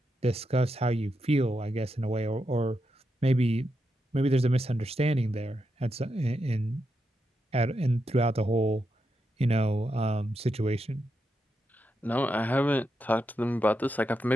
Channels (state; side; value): normal; both; correlation 0.85